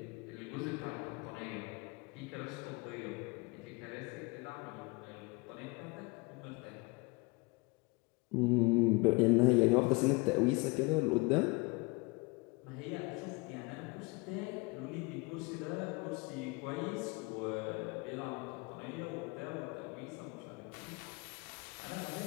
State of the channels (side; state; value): right; quieter; 26.6 dB